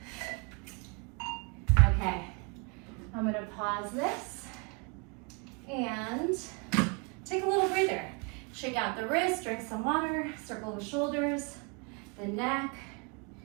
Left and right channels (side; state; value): left; quieter; 33.0 dB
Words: Okay, I'm gonna pause this and take a little breather. Shake out the wrist, drink some water, circle the shoulders, the neck,